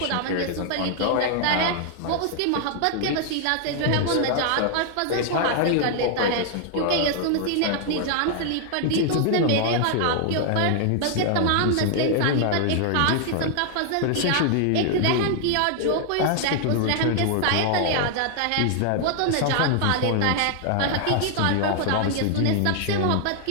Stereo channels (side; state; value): both; different; correlation 0.00